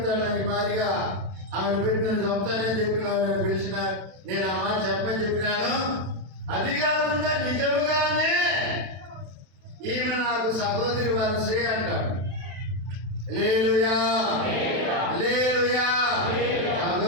ఈ మాదిరిగా ఆమెను పెట్టి నన్ను చంపుతానని చెప్పి నన్ను పిలిచిన, నేను ఆ మాట చెప్పని చెప్పినాను. అది కాకుండా నిజముగానే ఈమె నాకు సహోదరి వరసే అంటాడు. హల్లెలూయా, హల్లెలూయా.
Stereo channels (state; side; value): late; left; 32 ms